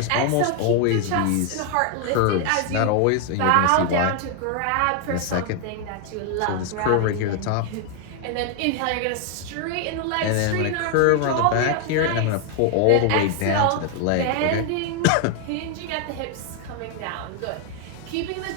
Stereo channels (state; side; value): different; both; correlation 0.01